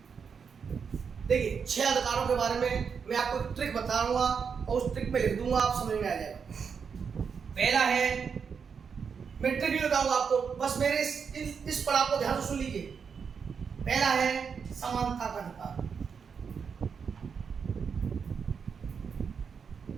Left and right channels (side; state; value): left; quieter; 6.3 dB